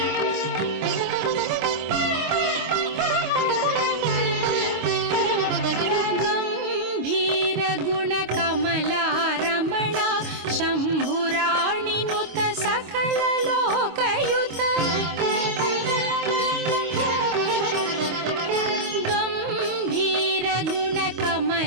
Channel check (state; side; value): late; left; 25 ms